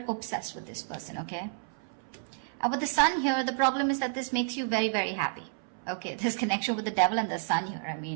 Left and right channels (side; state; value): left; silent; 57 dB below the other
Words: obsessed with this person, okay? With the sun here, the problem is that this makes you very, very happy. Okay, this connection with the devil and the sun here, I